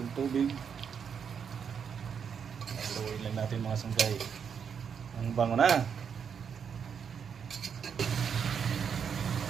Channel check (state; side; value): quieter; left; 7.1 dB